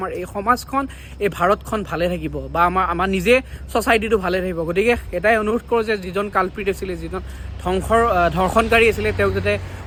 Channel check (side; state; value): both; identical; correlation 1.00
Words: এই সমাজখন এই ভাৰতখন ভালে থাকিব বা আমাৰ নিজে ছ'চাইটিটো ভালে থাকিব গতিকে এটাই অনুৰোধ কৰোঁ যে যিজন কালপ্ৰিট আছিলে যিজন ধৰ্ষণকাৰী আছিলে তেওঁক যাতে